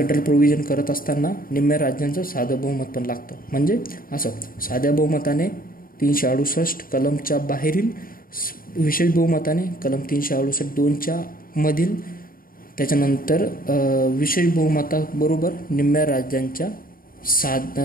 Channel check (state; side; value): late; right; 0.41 ms